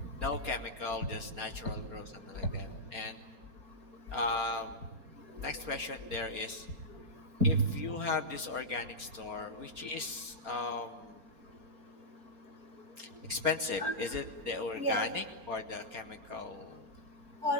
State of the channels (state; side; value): late; left; 4.3 ms